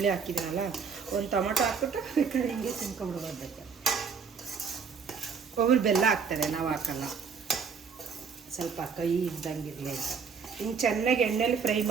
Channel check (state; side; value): quieter; left; 5.9 dB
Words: ಹಾಕಿದ್ದೀನಲ್ಲ, ಒಂದು ಟೊಮೊಟೊ ಹಾಕ್ಬಿಟ್ಟು ಹಿಂಗೆ ತಿನ್ಕೊಂಡ್ಬಿಡ್ಬೇಕು. ಒಬ್ಬರು ಬೆಲ್ಲ ಹಾಕ್ತಾರೆ, ನಾವು ಹಾಕಲ್ಲ. ಸ್ವಲ್ಪ ಕಹಿ ಇದ್ದಂಗಿರಲಿ ಅಂತ ಹಿಂಗೆ ಚೆನ್ನಾಗಿ ಎಣ್ಣೆಲಿ ಫ್ರೈ